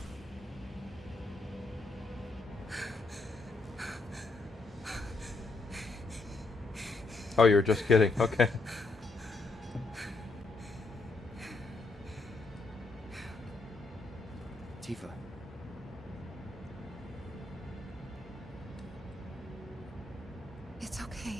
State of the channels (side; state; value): right; quieter; 3.3 dB